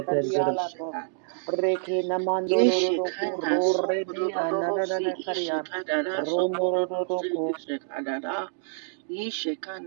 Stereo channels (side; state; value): left; silent; digital silence